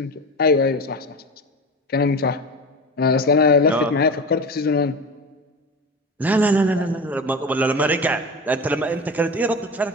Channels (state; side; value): normal; both; correlation 0.28